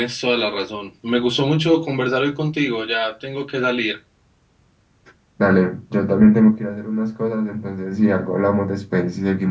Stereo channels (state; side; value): identical; both; correlation 1.00